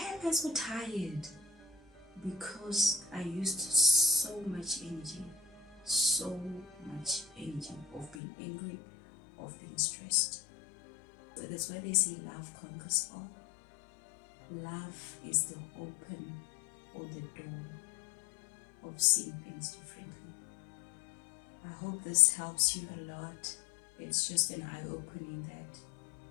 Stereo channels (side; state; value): right; drops out; at 8.2 s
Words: I so tired? Because I used so much energy of being angry, of being stressed. So that's why they say love conquers all. Love is the open or the door of seeing things differently. I hope this helps you a lot. It's just an eye-opening that